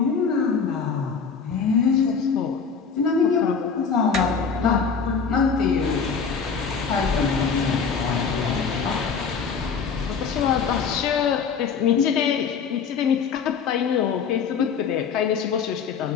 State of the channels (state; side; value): quieter; right; 5.9 dB